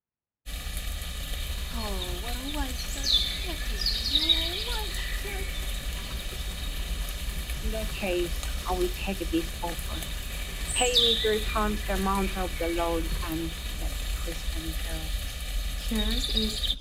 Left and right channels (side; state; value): both; identical; correlation 1.00